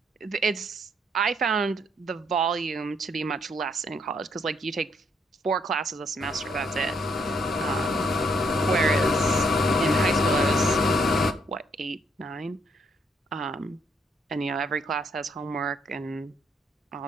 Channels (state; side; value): normal; both; correlation 0.71